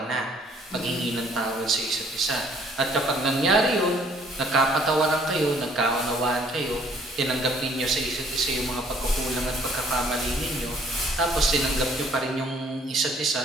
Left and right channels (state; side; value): normal; both; correlation 0.60